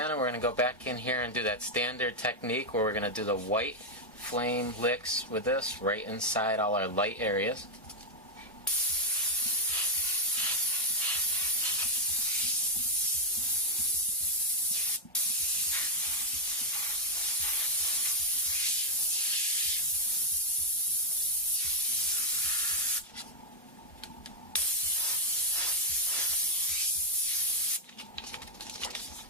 and we're going to go back in here and do that standard technique where we're going to do the white flame licks with this right inside all our light areas.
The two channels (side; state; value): both; normal; correlation 0.00